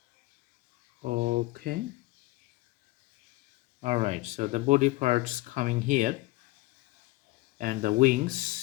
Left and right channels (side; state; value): right; quieter; 19.9 dB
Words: Okay. Alright, so the body parts coming here and the